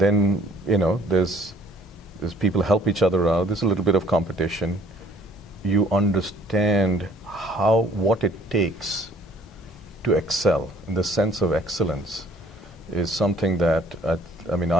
there's people help each other out. There's a little bit of competition. You understand what it takes to excel. And the sense of excellence is something that,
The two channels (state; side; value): normal; both; correlation 0.58